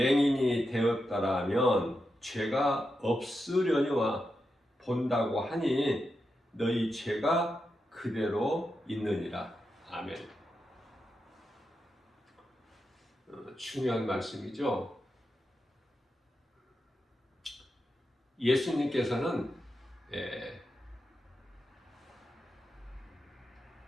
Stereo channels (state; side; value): normal; both; correlation 0.87